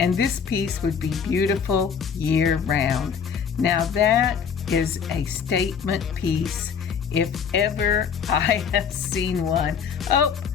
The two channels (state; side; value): quieter; right; 6.8 dB